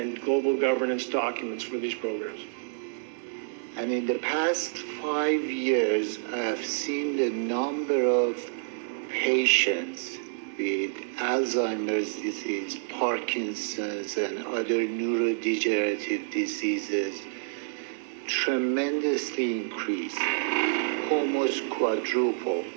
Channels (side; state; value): left; silent; digital silence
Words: global governance documents for these programs. And in the past 5 years, I've seen the number of patients with Alzheimer's disease, Parkinson's, and other neurodegenerative diseases tremendously increase, almost quadruple.